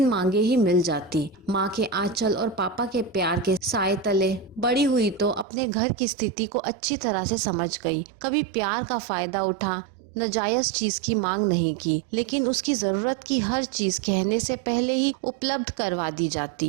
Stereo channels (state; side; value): drops out; left; at 5.5 s